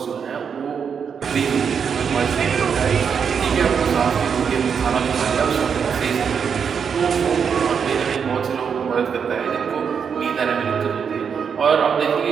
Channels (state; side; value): quieter; left; 6.8 dB